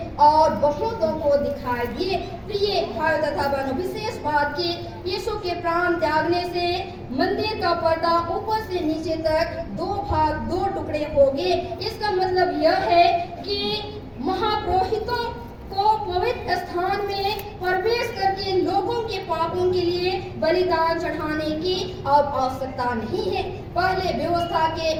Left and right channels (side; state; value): both; identical; correlation 1.00